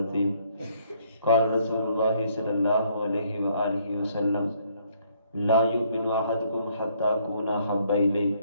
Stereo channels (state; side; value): inverted; both; correlation -0.67